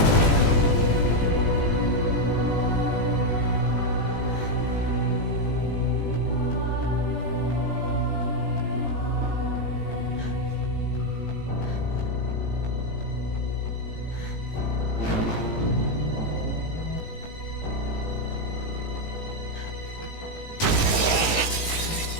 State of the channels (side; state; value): right; late; 17 ms